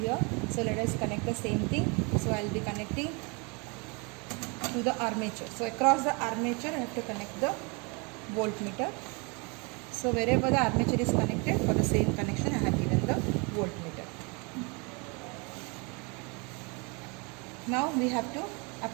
So let us connect the same thing. So I will be connecting to the armature. So across the armature I have to connect the voltmeter. So wherever the armature is connected, for the same connection I have given the voltmeter. Now we have to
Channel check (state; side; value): quieter; left; 30.8 dB